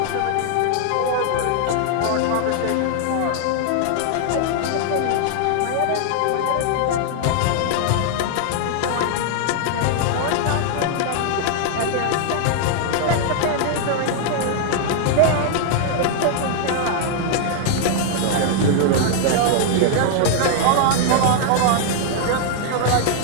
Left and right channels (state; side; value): different; both; correlation 0.00